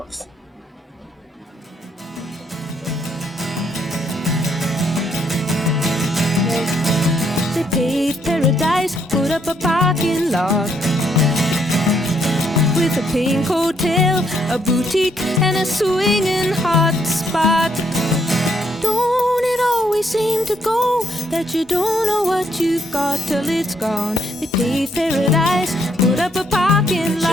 The They paved paradise, put up a parking lot with a pink hotel, a boutique, and a swinging hot spot. Don't it always seem to go that you don't know what you've got till it's gone? They paved paradise, put up a parking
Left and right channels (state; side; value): normal; both; correlation 0.72